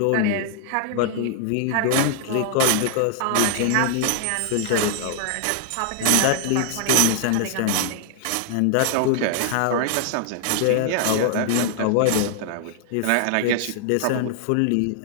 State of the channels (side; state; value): both; different; correlation 0.00